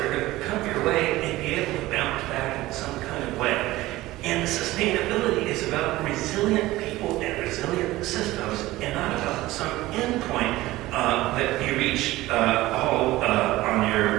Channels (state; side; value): quieter; left; 17.7 dB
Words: are going to come your way and be able to bounce back in some kind of way. And sustainability is about resilient people and resilient systems, and not about some end point that you reach all on